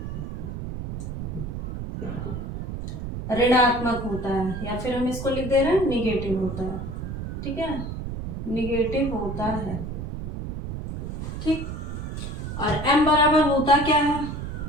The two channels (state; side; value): noise; right; rumble, 6 dB below the sound